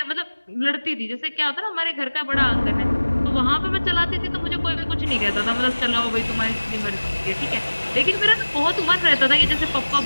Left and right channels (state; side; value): inverted; both; correlation -1.00